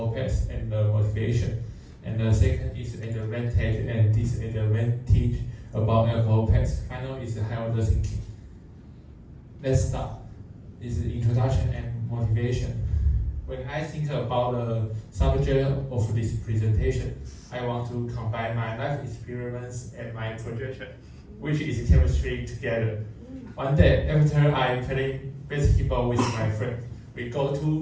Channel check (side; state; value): both; identical; correlation 1.00